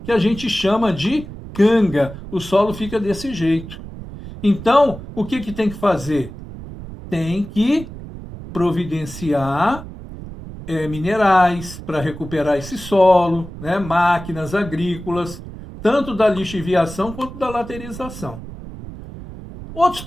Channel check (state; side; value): noise; right; rumble, 13 dB below the sound